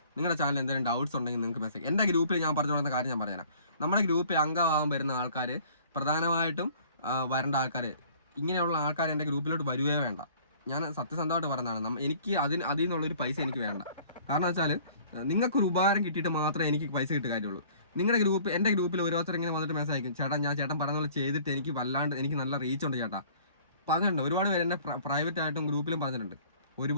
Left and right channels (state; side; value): inverted; both; correlation -0.53